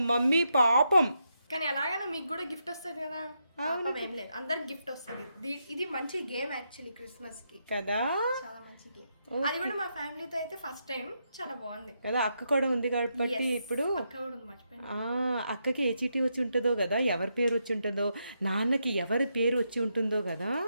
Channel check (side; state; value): both; inverted; correlation -0.82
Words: మమ్మీ పాపం. కానీ ఎలాగైనా మీకు కూడా గిఫ్ట్ వస్తుంది కదా. పాపం ఏం లేదు, అందరికి గిఫ్ట్ వస్తుంది. ఇది మంచి గేమ్ యాక్చువల్లీ క్రిస్మస్ కి కదా, చాలా మంచి గేమ్. అది కూడా మా ఫ్యామిలీతో అయితే ఫస్ట్ టైం, చాలా బాగుంది కదా. అక్క కూడా ఉంది కాబట్టి ఇప్పుడు అక్క కూడా ఉంది, మర్చిపోయాను. అక్కకి ఏ చీటీ వచ్చి ఉంటుందో కదా, ఎవరి పేరు వచ్చి ఉంటుందో, నాన్నకి ఎవరి పేరు వచ్చి ఉంటుందో కదా.